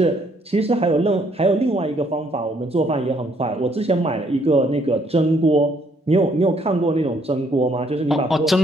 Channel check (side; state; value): both; normal; correlation 0.68